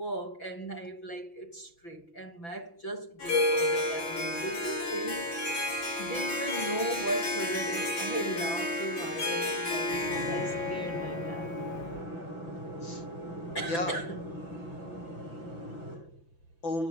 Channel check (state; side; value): late; right; 5.9 ms